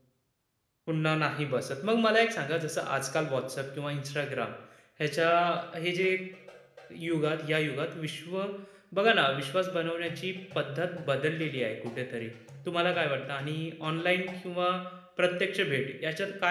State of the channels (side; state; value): both; identical; correlation 1.00